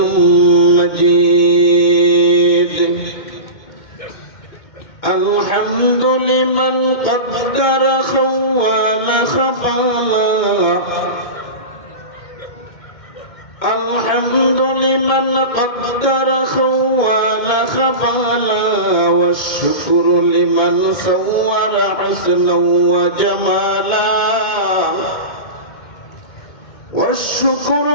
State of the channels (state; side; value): late; right; 2.1 ms